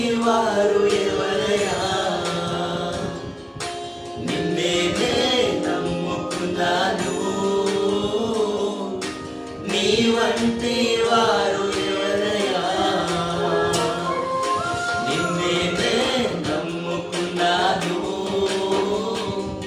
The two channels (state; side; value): identical; both; correlation 1.00